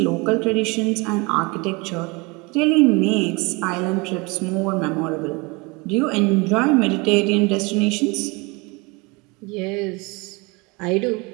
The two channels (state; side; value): quieter; left; 27.1 dB